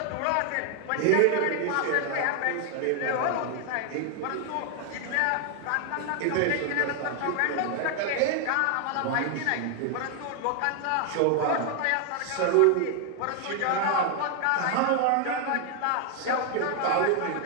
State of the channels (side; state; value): both; different; correlation 0.00